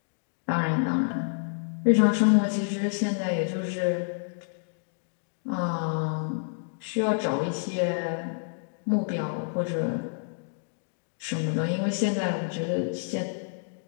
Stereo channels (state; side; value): silent; right; digital silence